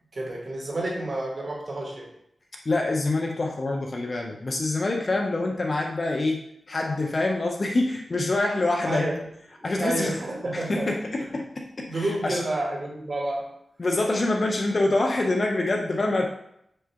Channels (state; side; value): normal; both; correlation 0.93